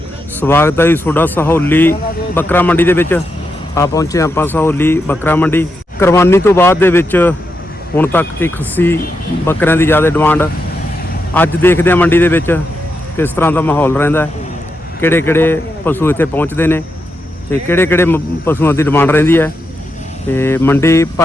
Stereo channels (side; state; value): both; normal; correlation 0.85